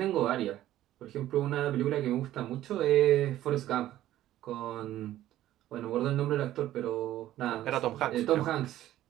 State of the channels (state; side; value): quieter; left; 13.7 dB